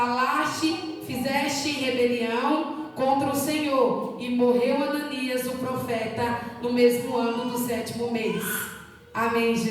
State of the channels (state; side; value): identical; both; correlation 1.00